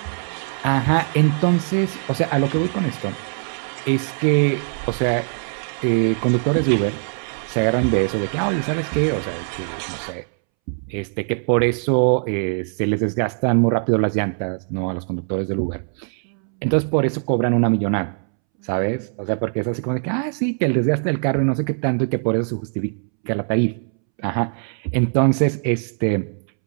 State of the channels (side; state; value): left; silent; 65 dB below the other